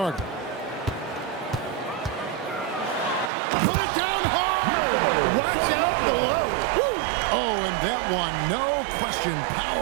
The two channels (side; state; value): left; drops out; at 3.3 s